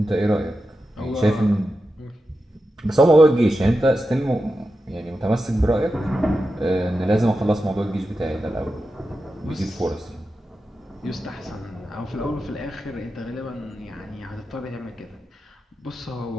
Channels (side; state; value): both; normal; correlation 0.90